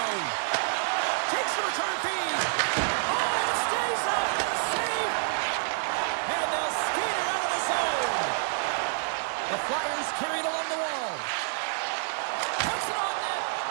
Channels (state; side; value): silent; left; 58 dB below the other